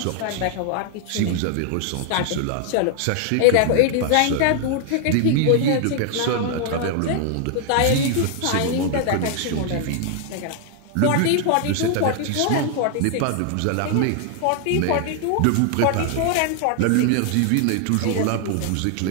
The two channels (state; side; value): different; both; correlation 0.00